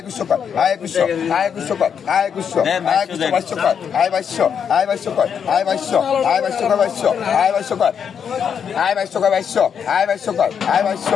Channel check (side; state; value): right; quieter; 7.5 dB